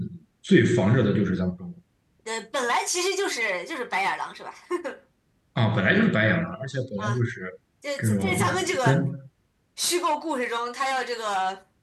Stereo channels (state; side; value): identical; both; correlation 1.00